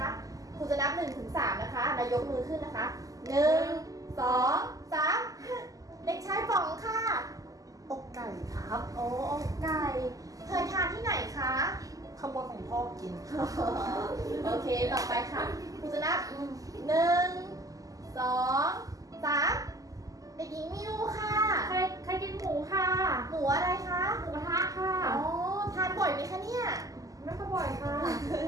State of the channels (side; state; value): left; late; 0.17 ms